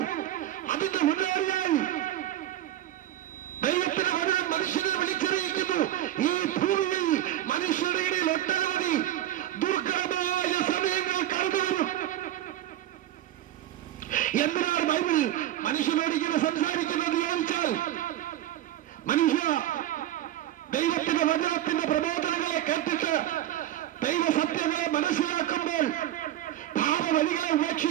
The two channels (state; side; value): quieter; left; 12.8 dB